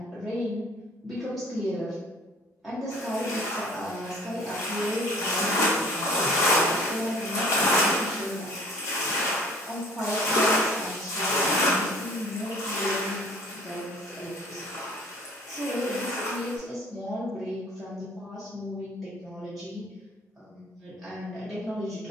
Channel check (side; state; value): both; normal; correlation 0.51